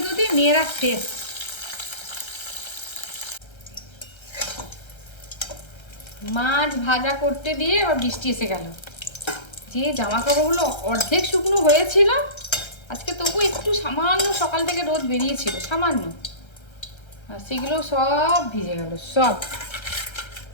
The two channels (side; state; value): right; late; 1.3 ms